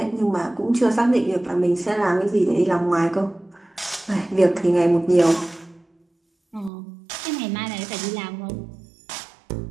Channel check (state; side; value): drops out; left; at 6.7 s